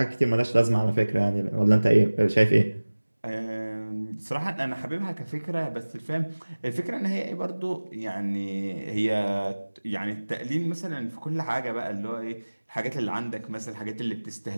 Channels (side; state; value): both; inverted; correlation -1.00